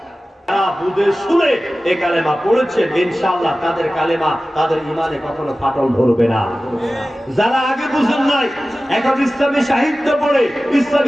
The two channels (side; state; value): both; normal; correlation 0.96